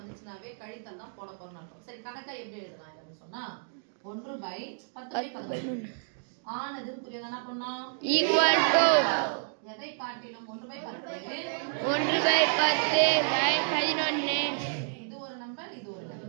கழித்தல் தான் போட போறோம்னு அர்த்தம். சரி, கணக்கா எப்படி எழுதலாம் அப்படின்னு சொன்னா 1/10/11 ஆனது புரியுதா? என்ன பண்ணோம்? ஈக்குவல் டு எதை காட்டிலும் 1/10 1/10/11 இது ஒரு நம்பர், இது ஒரு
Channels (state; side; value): silent; left; digital silence